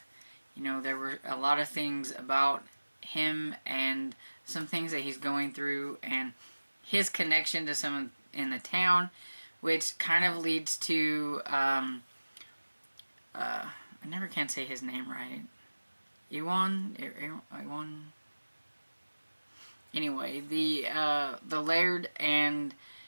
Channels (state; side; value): inverted; both; correlation -1.00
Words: there were a lot of things about him and some things that he's going through, and his connection to someone in the town, which kind of leads to I never can say his name right. Ewan. Anyway, the laird, and